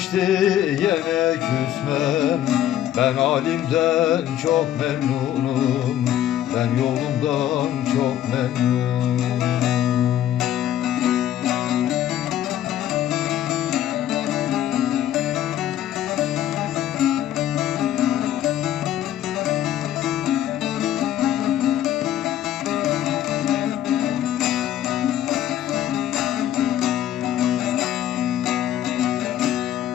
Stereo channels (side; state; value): right; quieter; 11.7 dB